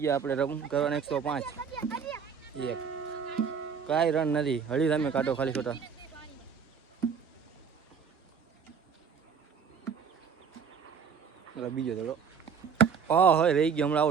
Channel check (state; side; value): quieter; left; 6.5 dB